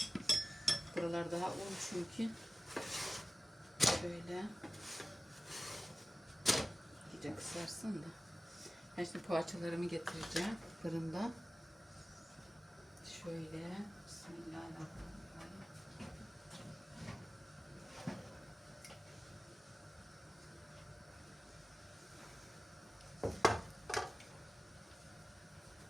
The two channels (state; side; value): normal; both; correlation 0.95